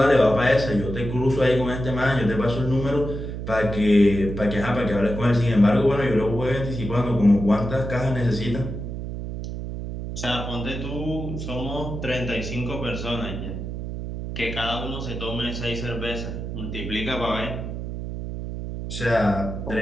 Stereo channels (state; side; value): noise; right; hum, 6 dB below the sound